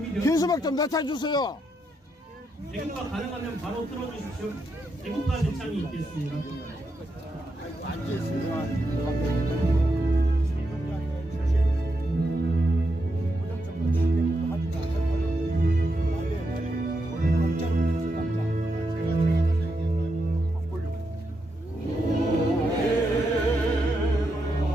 현수막 좀 낮춰주세요. 애국가 가능하면 바로 틀어주십시오. 애국가 대창이 있겠습니다.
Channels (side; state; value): both; normal; correlation 0.83